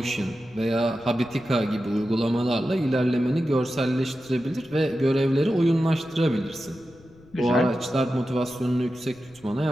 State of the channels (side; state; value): left; noise; rumble, 26 dB below the sound